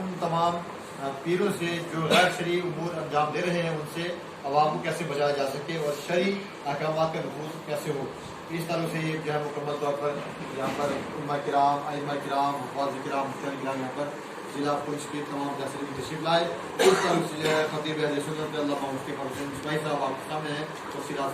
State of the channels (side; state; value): both; identical; correlation 1.00